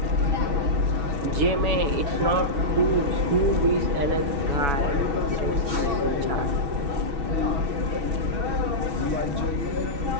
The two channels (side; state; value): left; late; 7.1 ms